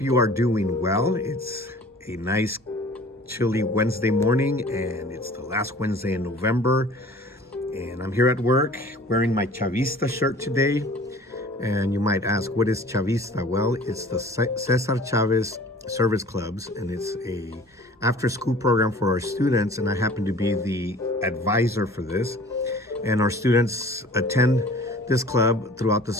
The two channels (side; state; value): both; normal; correlation 0.47